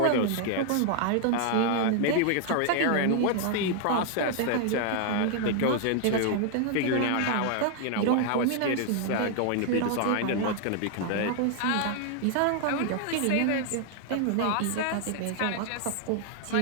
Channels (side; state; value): both; different; correlation 0.00